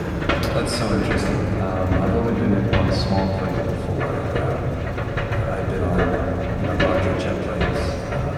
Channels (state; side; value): identical; both; correlation 1.00